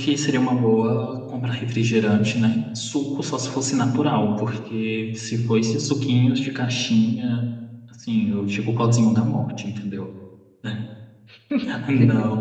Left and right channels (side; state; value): both; identical; correlation 1.00